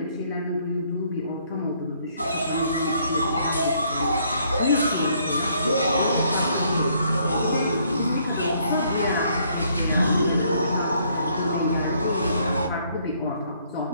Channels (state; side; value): inverted; both; correlation -0.67